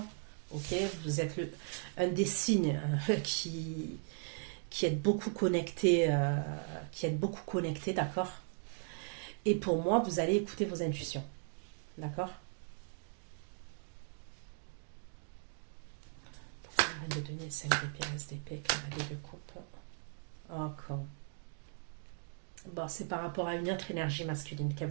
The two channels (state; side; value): silent; left; 53 dB below the other